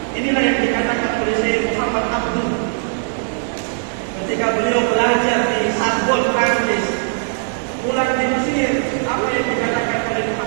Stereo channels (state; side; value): silent; left; digital silence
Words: Inilah yang dikatakan oleh Syekh Muhammad Abdul ketika beliau belajar di Sorbonne, Prancis, pulang di Mesir. Apa yang dikatakan oleh